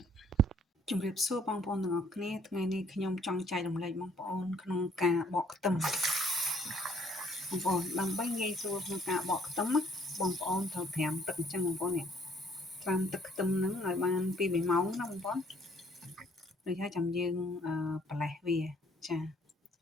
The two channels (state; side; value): normal; both; correlation 0.62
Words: ជំរាបសួរបងប្អូនទាំងអស់គ្នាថ្ងៃនេះខ្ញុំចង់ចែករំលែកបងប្អូនក្នុងការបកខ្ទឹមបងប្អូនដើម្បីងាយស្រួលក្នុងការបកខ្ទឹមបងប្អូនត្រូវត្រាំទឹកអញ្ចឹងបងប្អូននេះត្រាំទឹកខ្ទឹមហ្នឹងឲ្យបាន2-3ម៉ោងណាបងប្អូនដូចហើយចាំយើងប្រឡេះវាចាឥ